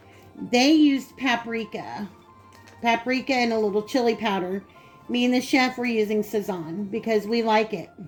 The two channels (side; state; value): both; identical; correlation 1.00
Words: They used paprika and a little chili powder. Me and the chef were using Sazon because we like it.